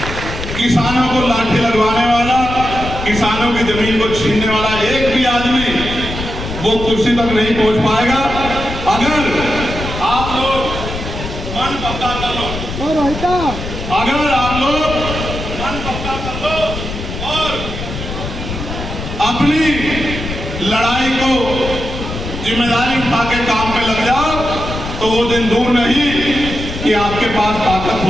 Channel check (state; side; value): noise; left; rumble, 7 dB below the sound